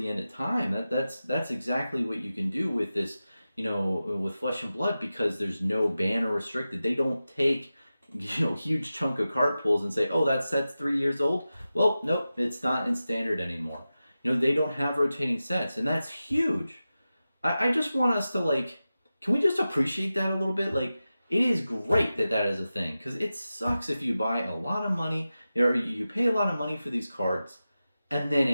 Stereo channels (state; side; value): inverted; both; correlation -0.94